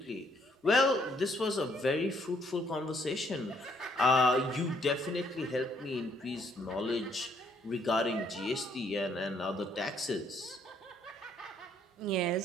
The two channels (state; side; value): normal; both; correlation 0.68